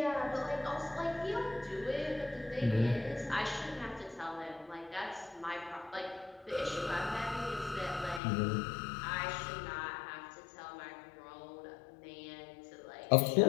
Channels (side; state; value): right; drops out; at 8.2 s